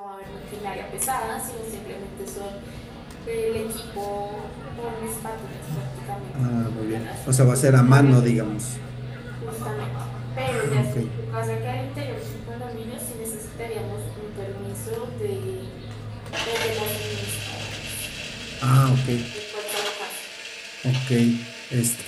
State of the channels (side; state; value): both; identical; correlation 1.00